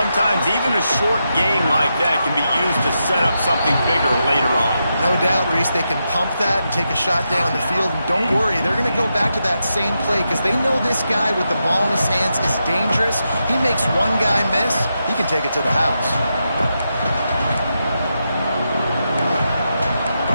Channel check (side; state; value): both; inverted; correlation -0.86